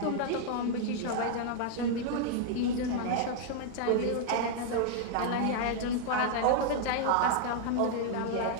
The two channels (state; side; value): different; both; correlation -0.01